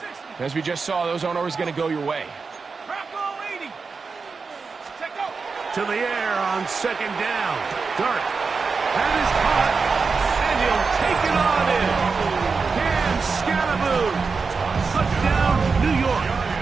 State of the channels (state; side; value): quieter; left; 4.8 dB